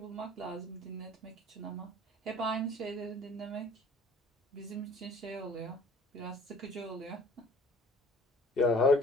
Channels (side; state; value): both; normal; correlation 0.50